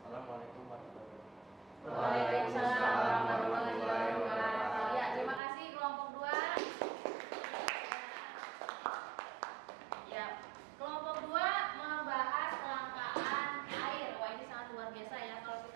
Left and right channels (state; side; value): drops out; left; at 5.4 s